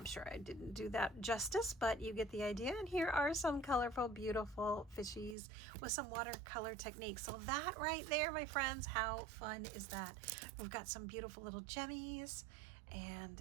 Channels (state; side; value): drops out; left; at 5.4 s